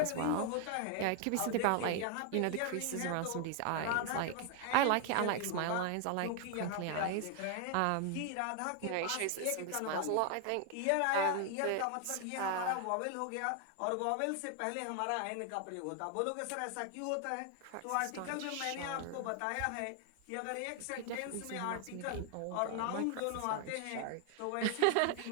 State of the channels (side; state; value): both; different; correlation 0.00